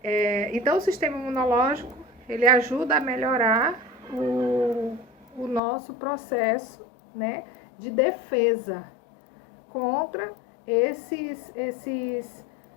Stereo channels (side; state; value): right; drops out; at 5.6 s